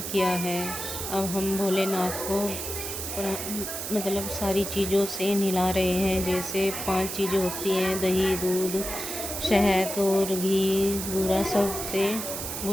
किया है। अब हम भोलेनाथ को मतलब सारी चीज़ों से नहला रहे हैं। जैसे 5 चीज़ें होती हैं, दही, दूध, शहद और घी, बूरा, सब से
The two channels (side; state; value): right; noise; hiss, 5 dB below the sound